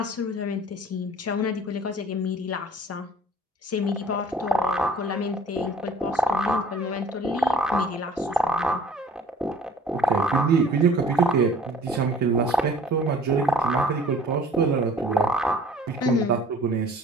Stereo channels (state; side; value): normal; both; correlation 0.51